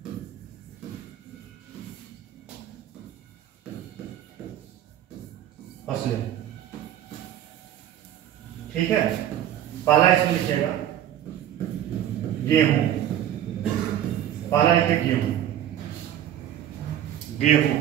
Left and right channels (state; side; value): quieter; left; 11.3 dB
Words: फसलें, ठीक है। पहला इसमें लिखिएगा गेहूं, पहला लिखिए गेहूं, गेहूं,